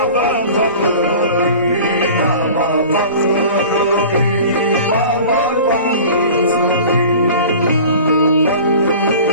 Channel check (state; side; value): inverted; both; correlation -0.41